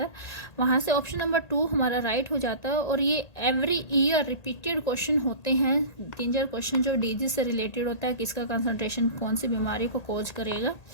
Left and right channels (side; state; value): right; late; 1.8 ms